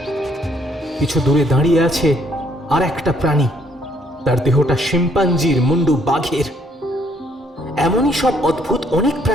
কিছু দূরে দাঁড়িয়ে আছে আর একটা প্রাণী, তার দেহটা শিম্পাঞ্জির, মুন্ডু বাঘের। এমনই সব অদ্ভুত অনেক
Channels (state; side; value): normal; both; correlation 0.67